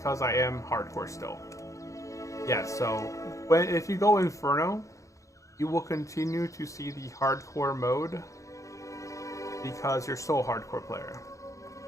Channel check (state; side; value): late; right; 0.15 ms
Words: I am hardcore still. Yeah, so if you go Inferno, you will continue to see the hardcore mode because you're still a hardcore player.